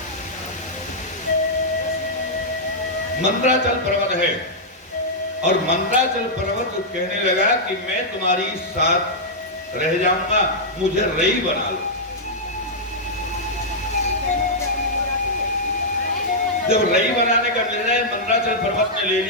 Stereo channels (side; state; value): both; normal; correlation -0.08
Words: मंद्राचल पर्वत है, और मंद्राचल पर्वत कहने लगा कि मैं तुम्हारी साथ रह जाऊंगा, मुझे रई बना लो। जब रई बनाने का निर्णय मंद्राचल पर्वत ने ले